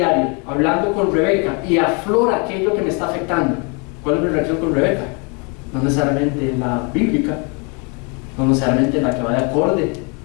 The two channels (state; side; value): quieter; right; 33.8 dB